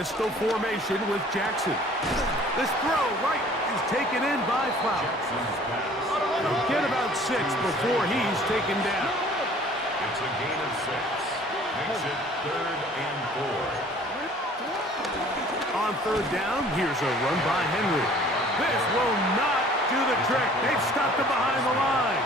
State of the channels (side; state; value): both; normal; correlation 0.52